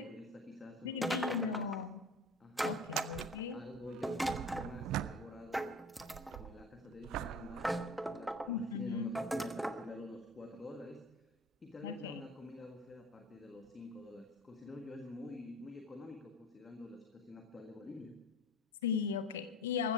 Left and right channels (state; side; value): normal; both; correlation 0.40